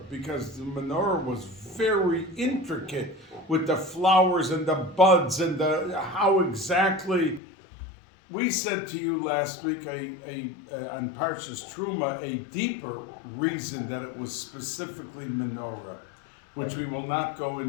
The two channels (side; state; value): right; drops out; at 7.4 s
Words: because the menorah was very intricate with the flowers and the buds and how exactly. We said to you last week on Parshas Truma a deeper reason that it was specifically menorah, which we will not go